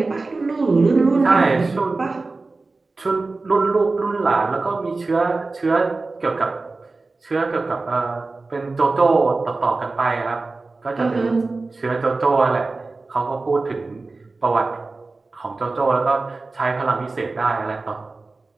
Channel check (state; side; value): quieter; left; 3.6 dB